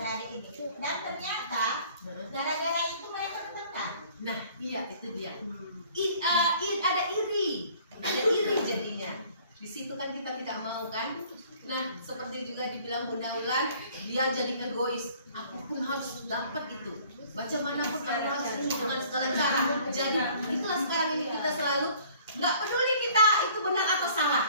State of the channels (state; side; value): inverted; both; correlation -0.54